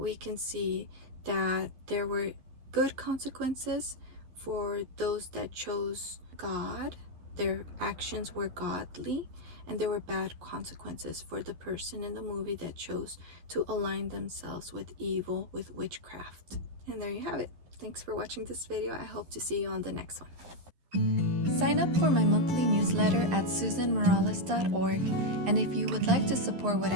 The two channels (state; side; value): late; left; 11 ms